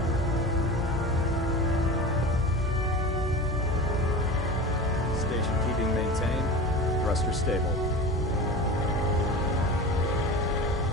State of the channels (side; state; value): both; normal; correlation 0.32